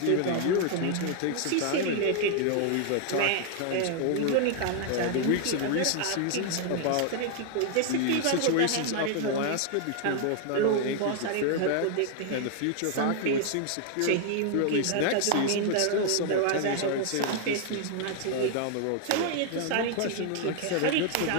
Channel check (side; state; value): both; different; correlation 0.00